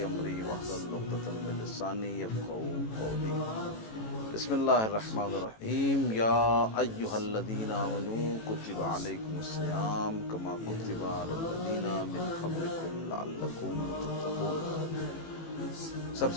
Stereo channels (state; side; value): late; right; 18 ms